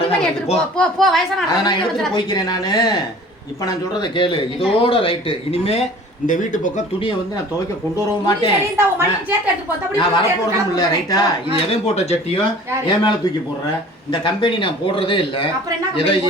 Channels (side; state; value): both; normal; correlation 0.46